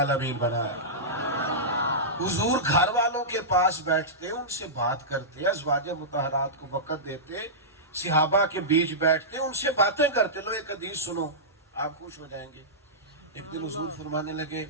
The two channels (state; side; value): normal; both; correlation -0.15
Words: بنایا. حضور گھر والوں کے پاس بیٹھتے, ان سے بات کرتے, ازواج مطہرات کو وقت دیتے, صحابہ کے بیچ بیٹھتے, ان سے باتیں کرتے. لو ایک حدیث سنو آپ خوش ہو جائیں گے. ایک دن حضور فرمانے لگے,